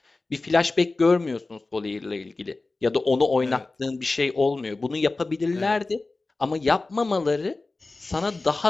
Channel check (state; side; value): quieter; right; 3.4 dB